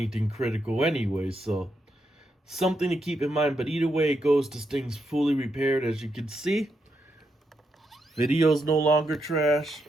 critical anyway. So something to keep in mind. But either way it goes, this thing's fully repaired, as you can see. Video's no longer trash.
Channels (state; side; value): normal; both; correlation 0.82